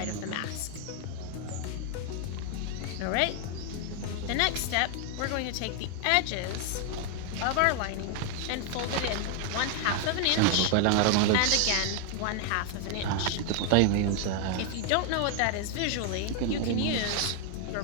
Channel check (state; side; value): different; both; correlation 0.00